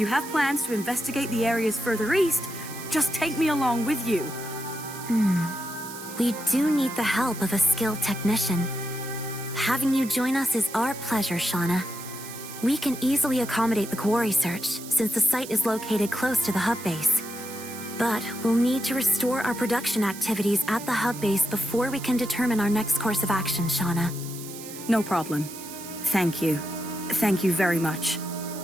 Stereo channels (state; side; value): noise; right; hiss, 13 dB below the sound